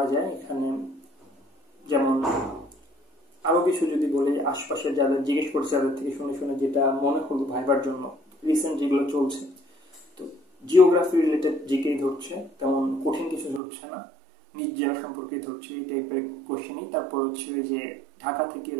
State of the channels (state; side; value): drops out; left; at 13.6 s